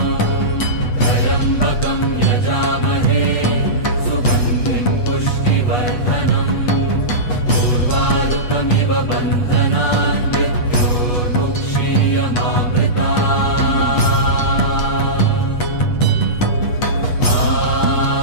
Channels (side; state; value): right; late; 8.2 ms